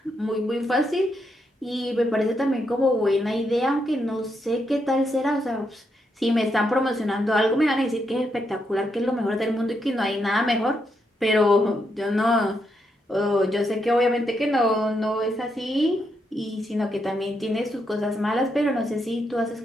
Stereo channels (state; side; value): normal; both; correlation 0.80